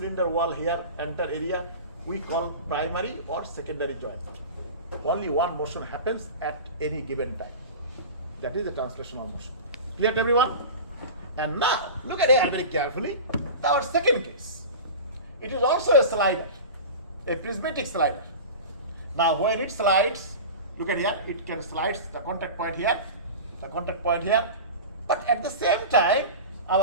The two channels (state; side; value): inverted; both; correlation -0.31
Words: wall here, enter area, we call primary or secondary joint. Only one motion happens at any given time. That is the translational motion. Clear to everyone? And now look at here very carefully. Our second case. It is also a slider, a prismatic slider. Now when it slides, look at here, it can slide the contact point here, the contact point here, but at the same time,